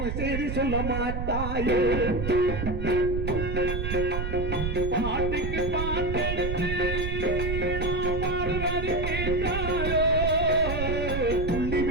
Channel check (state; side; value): noise; right; rumble, 3 dB below the sound